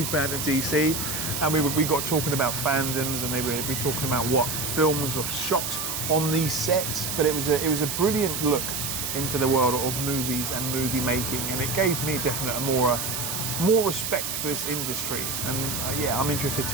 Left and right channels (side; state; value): right; noise; hiss, 3 dB below the sound